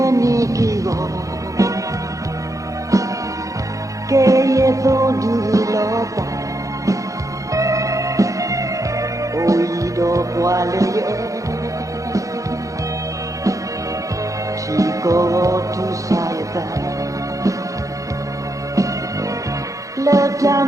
Keye to dulota Oido kwale Chico tu sayata Leta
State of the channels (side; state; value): left; late; 0.16 ms